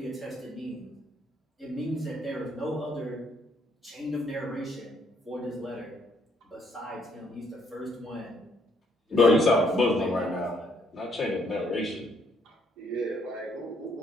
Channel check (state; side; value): normal; both; correlation 0.69